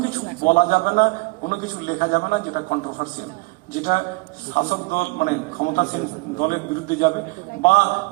কিছু বলা যাবে না, কোনো কিছু লেখা যাবে না যেটা কন্ট্রোভার্সিয়াল, যেটা শাসক দল মানে ক্ষমতাসীন দলের বিরুদ্ধে যাবে, বা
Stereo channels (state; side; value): quieter; left; 27.1 dB